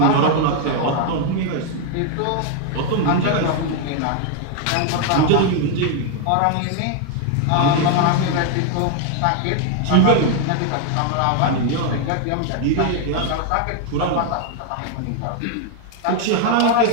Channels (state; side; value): different; both; correlation 0.01